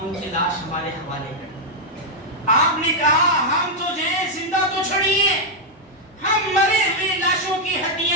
ان کی لاش ہمارے حوالے کریں۔ آپ نے کہا ہم تو جو ہے زندہ تو چھڑیے، ہم مرے ہوئے لاشوں کی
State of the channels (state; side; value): normal; both; correlation -0.02